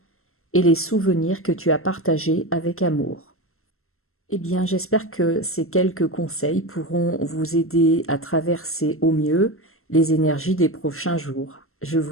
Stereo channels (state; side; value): late; right; 0.62 ms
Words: et les souvenirs que tu as partagés avec amour. Eh bien, j'espère que ces quelques conseils pourront vous aider à traverser au mieux les énergies des prochains jours. Je